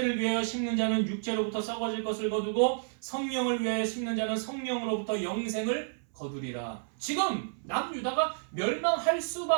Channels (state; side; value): silent; left; 57 dB below the other